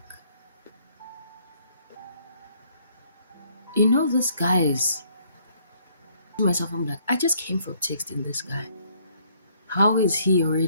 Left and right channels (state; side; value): inverted; both; correlation -0.65